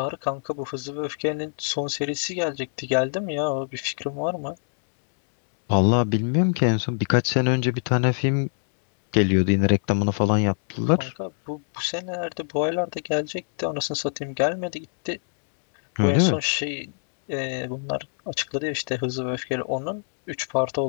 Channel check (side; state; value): right; silent; digital silence